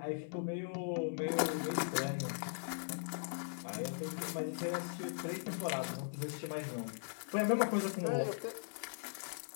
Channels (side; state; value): right; silent; 52 dB below the other